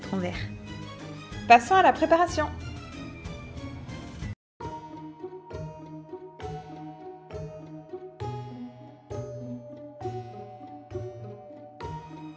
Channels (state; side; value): identical; both; correlation 1.00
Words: vert. Passons à la préparation.